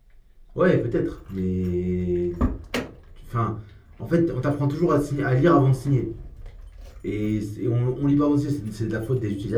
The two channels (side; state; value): both; identical; correlation 1.00